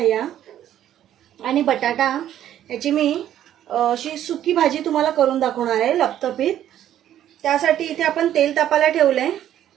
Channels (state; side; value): quieter; left; 11.4 dB